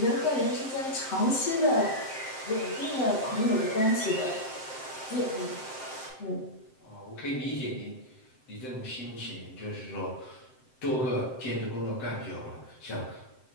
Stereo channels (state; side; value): late; right; 7.7 ms